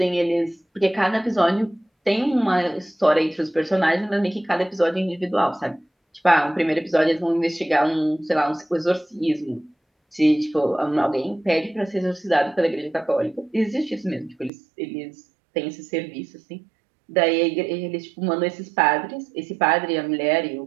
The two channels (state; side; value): drops out; left; at 14.5 s